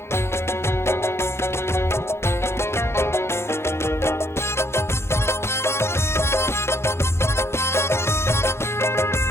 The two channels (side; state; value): right; late; 0.12 ms